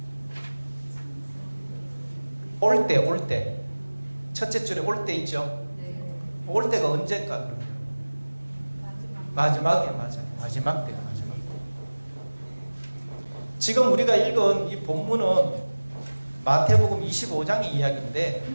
올 때. 첫째 줄에 올 때 있죠? 올 때가 언제일까, 그러면? 마지막에, 맞아요. 마지막 때. 지금 우리가 읽은 이 본문은 마태복음 25장의 이야기인데,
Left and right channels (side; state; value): both; inverted; correlation -1.00